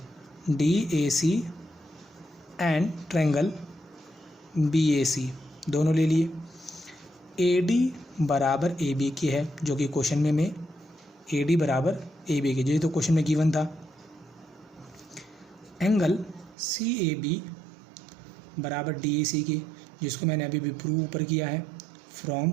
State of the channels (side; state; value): left; drops out; at 16.6 s